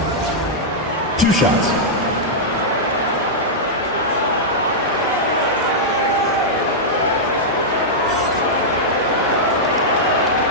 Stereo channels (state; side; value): normal; both; correlation -0.08